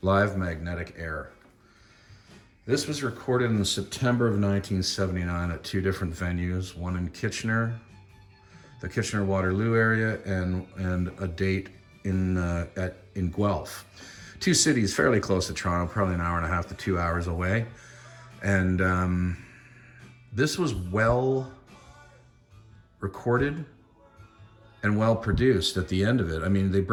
Live Magnetic Air. This was recorded in September of 1979 at two different venues, one in Kitchener, the Kitchener-Waterloo area, and a date in Guelph. Two cities fairly close to Toronto, probably an hour and a half to 2 hours away. And this was well recorded and well produced at the end of it. I mean, they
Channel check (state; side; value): identical; both; correlation 1.00